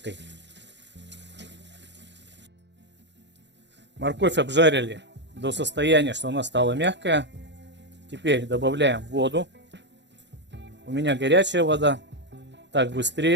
Морковь обжарили до состояния, что она стала мягкая. Теперь добавляем воду. У меня горячая вода, так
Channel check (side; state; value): left; late; 0.52 ms